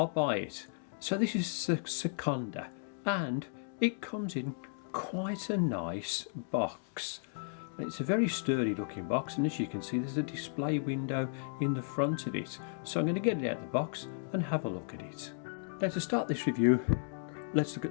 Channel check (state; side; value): silent; right; digital silence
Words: buy it. So this is Sekonda and it comes in quite a nice box. It's a very sturdy looking box, and as you can see there's a display window in the front of it. So I'm going to get it out of the box and have a look at it. Now to start this review, let's look